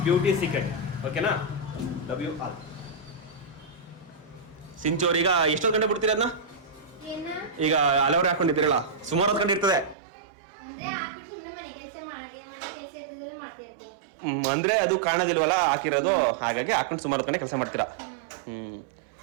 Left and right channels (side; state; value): left; drops out; at 10.0 s